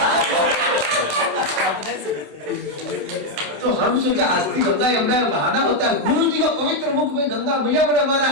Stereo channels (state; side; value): late; left; 27 ms